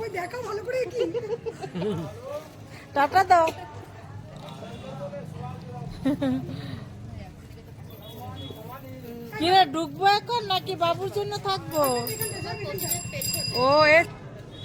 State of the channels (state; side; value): identical; both; correlation 1.00